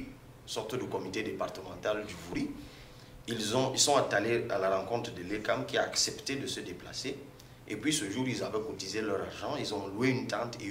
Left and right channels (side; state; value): both; identical; correlation 1.00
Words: sorte de comité départemental du Vouri. Ils sont allés à la rencontre de l'ECAM qui a accepté de se déplacer. Et puis ce jour, ils avaient cotisé leur argent, ils ont loué une tente et